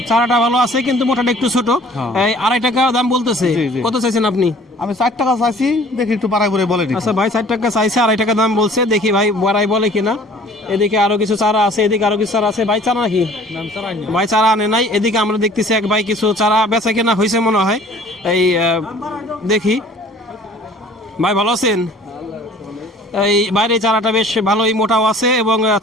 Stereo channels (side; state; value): both; normal; correlation 0.51